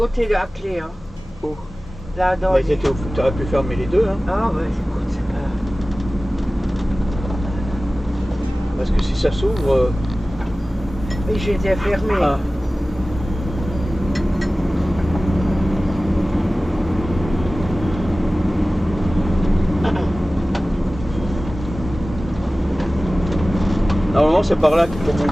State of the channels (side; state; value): both; normal; correlation 0.97